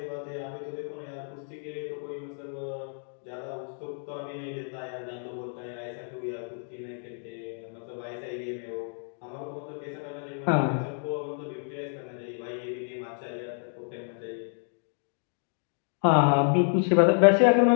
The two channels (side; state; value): right; silent; 58 dB below the other